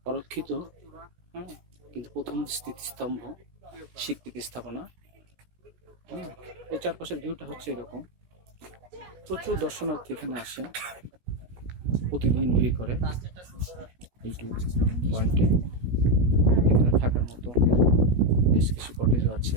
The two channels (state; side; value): late; left; 17 ms